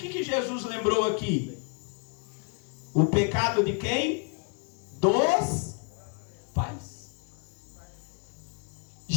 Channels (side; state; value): right; quieter; 35.3 dB